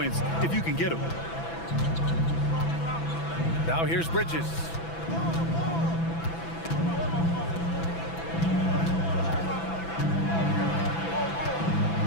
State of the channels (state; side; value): late; right; 6.0 ms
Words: if you can get them. Now here's Bridges.